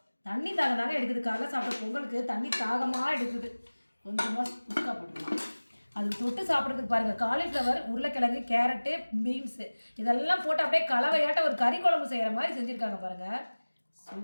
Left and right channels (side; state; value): both; inverted; correlation -1.00